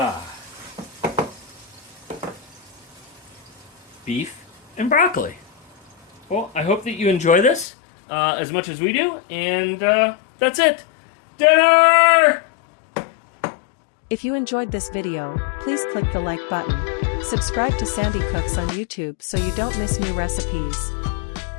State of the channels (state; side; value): drops out; right; at 7.7 s